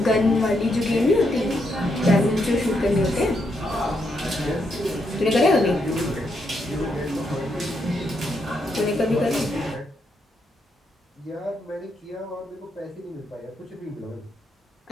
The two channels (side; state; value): both; normal; correlation 0.79